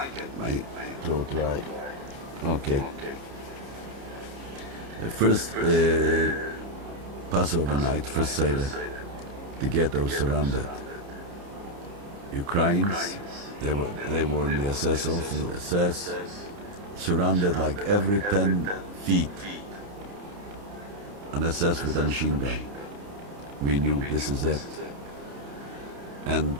my throat dry. Okay. The first Passover night, first Seder, the ghetto surrounded. Ukrainians, they were in the SS, also the SS, surrounded like every 10 feet. An SS with a machine gun. We knew this is it. And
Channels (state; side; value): late; left; 30 ms